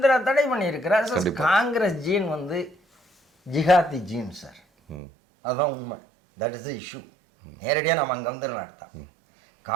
தடை பண்ணியிருக்கிறார். காங்கிரஸ் ஜீன் வந்து ஜிஹாதி ஜீன் சார், அதுதான் உண்மை. That is the issue. நேரடியாக நம்ம அங்கே வந்துடலாம். எடுத்தோம்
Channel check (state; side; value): drops out; left; at 5.0 s